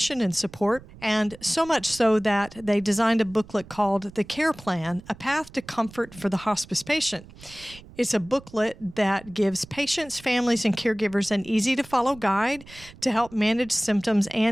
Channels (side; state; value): right; noise; rumble, 20 dB below the sound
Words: and support, and so much so that they designed a booklet called The Care Plan, A Path to Comfort for the Hospice Patient. It's a booklet that gives patients, families, and caregivers an easy-to-follow guide to help manage symptoms